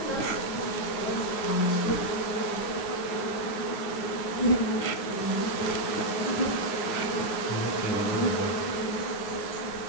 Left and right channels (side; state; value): right; late; 9.5 ms